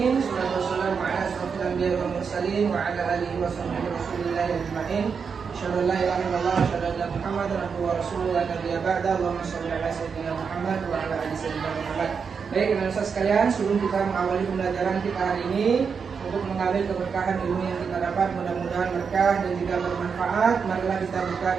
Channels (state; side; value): quieter; left; 6.0 dB